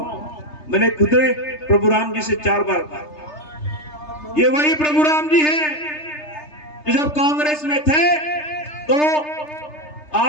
मैंने खुद प्रभु राम जी से 4 बार कहा। ये वही प्रभु राम जी हैं जो जब कांग्रेस में थे तो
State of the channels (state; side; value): late; right; 3.3 ms